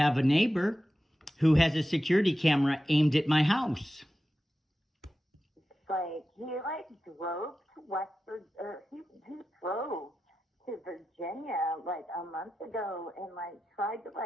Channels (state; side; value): normal; both; correlation 0.92